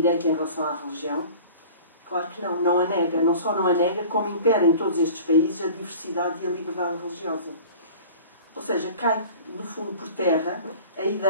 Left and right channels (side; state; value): both; inverted; correlation -0.42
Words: em relação à religião? Claro que não, não a nega. Não só não a nega, como impera em todos estes países a diversidade e a liberdade religiosa. Ou seja, cai, no fundo, por terra a